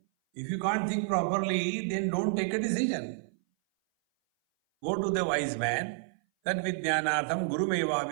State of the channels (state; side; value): silent; left; 57 dB below the other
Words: If you can't think properly, then don't take a decision. Go to the wise man, tad vidyanartham gurumeva